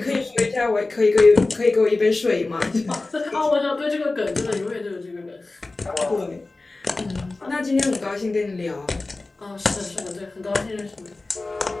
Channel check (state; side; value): quieter; right; 3.3 dB